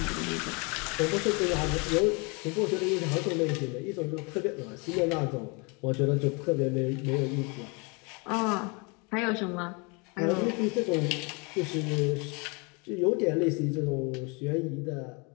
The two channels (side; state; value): right; quieter; 31.1 dB